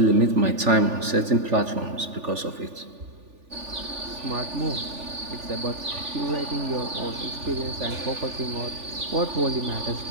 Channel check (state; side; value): late; left; 3.4 ms